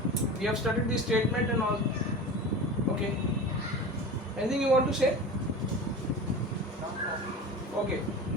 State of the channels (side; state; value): both; normal; correlation 0.32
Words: We have studied the statement and all. Okay. Anything you want to say? Okay.